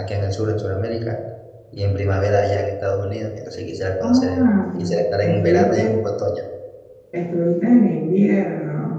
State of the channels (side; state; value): both; identical; correlation 1.00